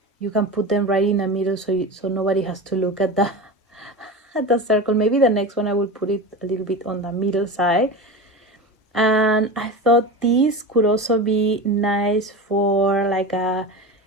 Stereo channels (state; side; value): normal; both; correlation 0.27